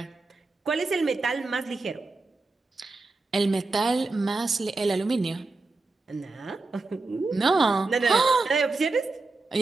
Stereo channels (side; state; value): left; quieter; 3.5 dB